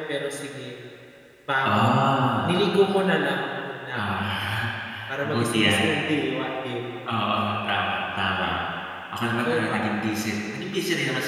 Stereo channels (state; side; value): identical; both; correlation 1.00